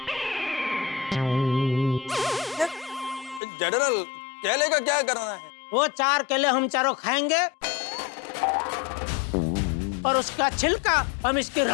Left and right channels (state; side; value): drops out; right; at 3.4 s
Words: जनरल केले का क्या करना है? वो 4 केले हम चारों खाएंगे और उसका छिलका हम इसकी